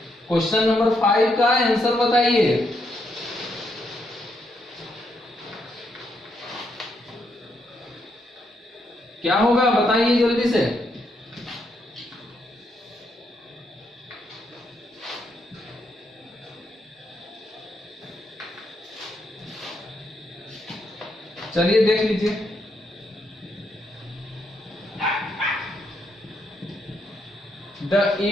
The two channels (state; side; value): normal; both; correlation 0.78